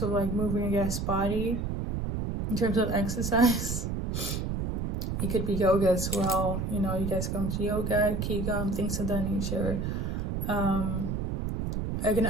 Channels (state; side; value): noise; right; rumble, 2 dB below the sound